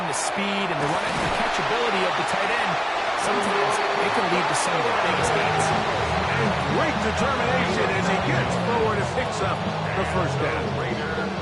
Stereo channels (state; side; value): identical; both; correlation 1.00